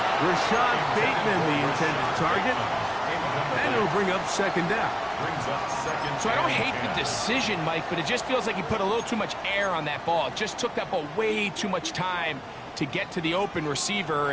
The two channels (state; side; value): identical; both; correlation 1.00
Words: Rashad Bateman, the intended target. And it'll bring up second down. Brings up second. So I don't hate the decision, Mike, but it just feels like he put a little too much air on that ball. It just took that ball way too much time to get to the open receiver.